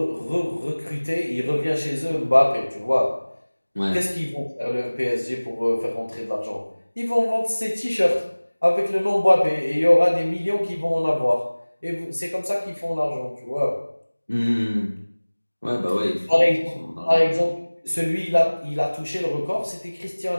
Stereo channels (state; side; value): inverted; both; correlation -1.00